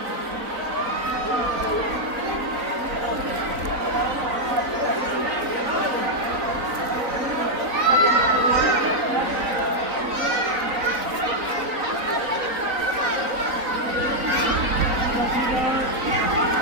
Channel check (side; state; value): left; late; 3.9 ms